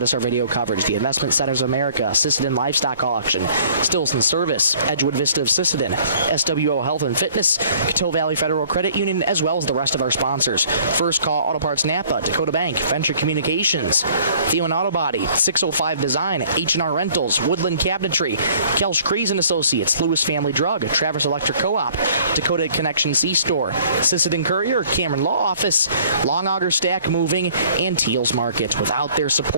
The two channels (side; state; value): both; inverted; correlation -0.55